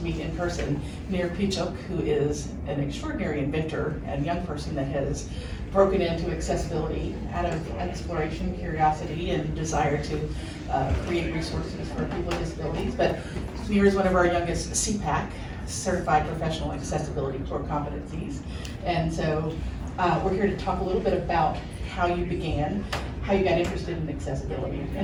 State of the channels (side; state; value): both; identical; correlation 1.00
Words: meet in person Nir Pechuk, who is an extraordinary inventor and young person that has broken into accessibility out of exploration, curiosity, and desire to create resources for people with disabilities. But Nir is one of our youngest CPACC, Certified Professional Accessibility Core Competencies. And so we're here to talk a little bit about how you began, how you got interested in accessibility,